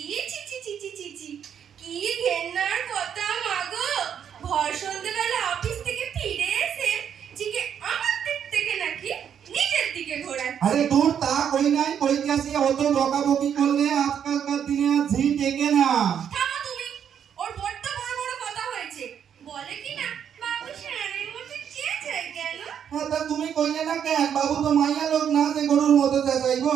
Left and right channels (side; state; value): left; quieter; 8.5 dB